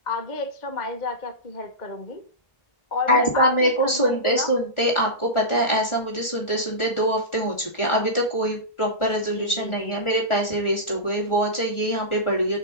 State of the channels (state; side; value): late; right; 1.4 ms